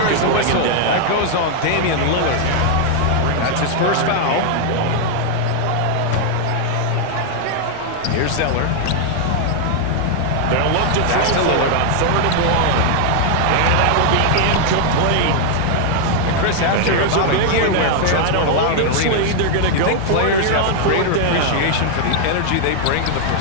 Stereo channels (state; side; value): different; both; correlation 0.00